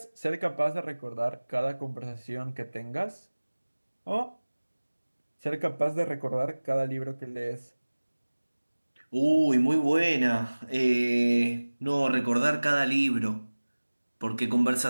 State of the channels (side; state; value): both; inverted; correlation -1.00